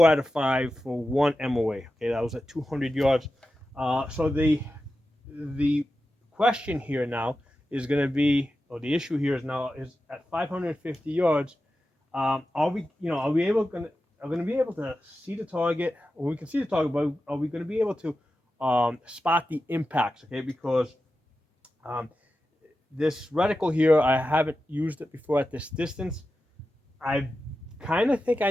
out of 5 for 1 MOA. Okay, that was at 200 yards. So the question here now is going to be, or the issue here is now is at 550 yards. Are we going to be able to see the target? Or we can see the target, but are we going to be able to spot the impacts? Okay, because this reticle here, I haven't used it before at this distance. I kind of think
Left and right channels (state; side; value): normal; both; correlation 0.92